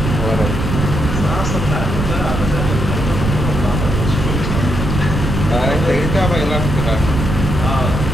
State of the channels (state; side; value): noise; right; rumble, 2 dB below the sound